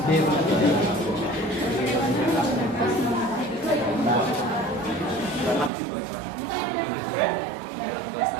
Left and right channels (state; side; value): drops out; left; at 5.7 s